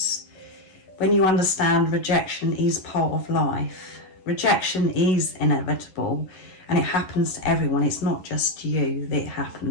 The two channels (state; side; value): late; right; 11 ms